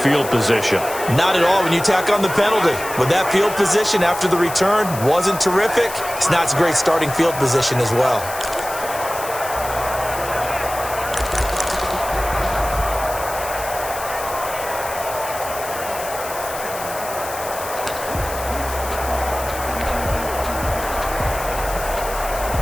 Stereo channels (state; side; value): noise; left; hiss, 11 dB below the sound